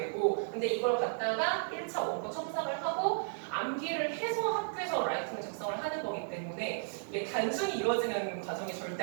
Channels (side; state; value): left; silent; digital silence